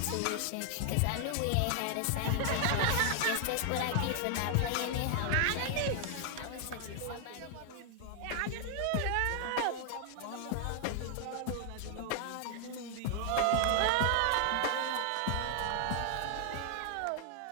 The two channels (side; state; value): both; different; correlation 0.00